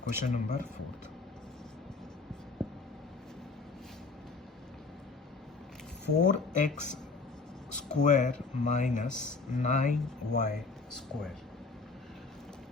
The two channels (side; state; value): right; quieter; 4.1 dB